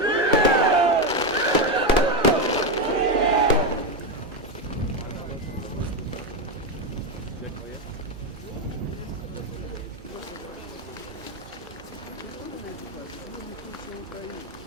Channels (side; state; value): both; normal; correlation 0.10